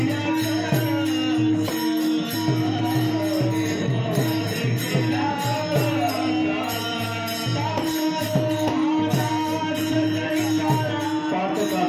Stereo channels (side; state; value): both; identical; correlation 1.00